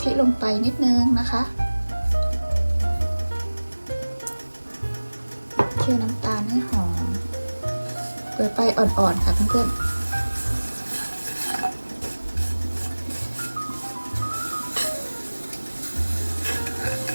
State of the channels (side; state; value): both; inverted; correlation -1.00